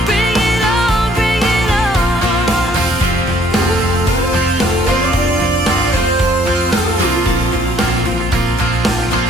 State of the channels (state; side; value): normal; both; correlation 0.61